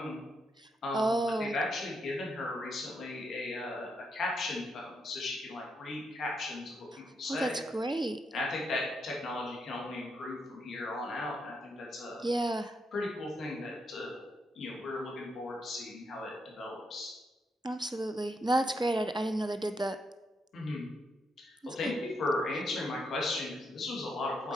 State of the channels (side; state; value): both; normal; correlation 0.79